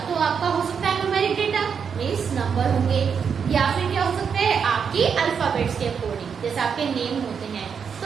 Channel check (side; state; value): left; quieter; 6.7 dB